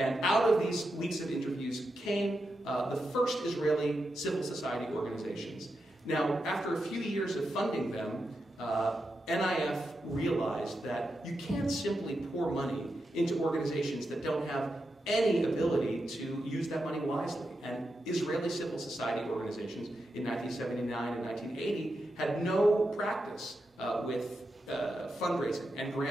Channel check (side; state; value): both; normal; correlation 0.87